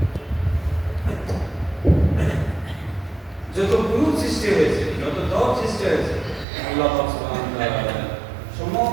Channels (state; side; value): drops out; left; at 6.5 s